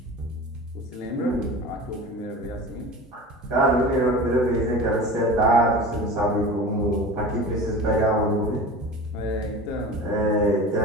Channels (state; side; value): normal; both; correlation 0.35